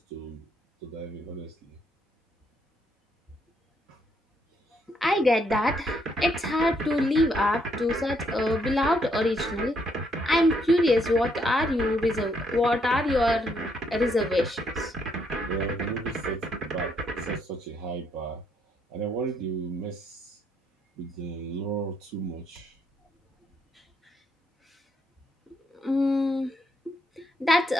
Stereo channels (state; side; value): normal; both; correlation 0.73